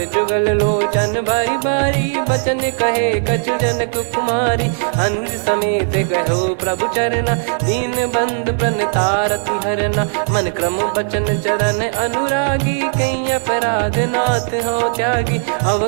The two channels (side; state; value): left; silent; digital silence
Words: जुगल लोचन बारी बारी बचन कहे कछु जनक कुमारी। अनुज समेत गहो प्रभु चरना दीन बंधु प्रणतारति हरना। मन क्रम बचन चरण अनुरागी कहीं अपराध नाथ हो त्यागी।